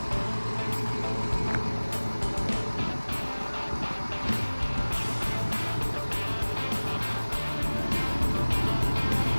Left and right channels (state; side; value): inverted; both; correlation -1.00